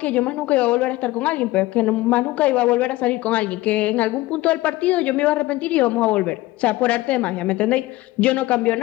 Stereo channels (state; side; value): quieter; right; 18.3 dB